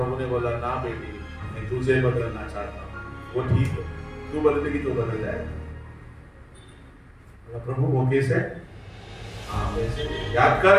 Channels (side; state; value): both; identical; correlation 1.00